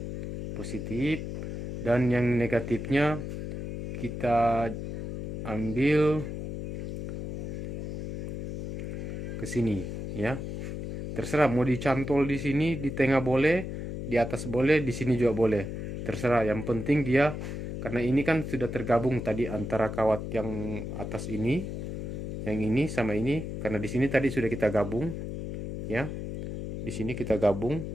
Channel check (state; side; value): noise; left; hum, 5 dB below the sound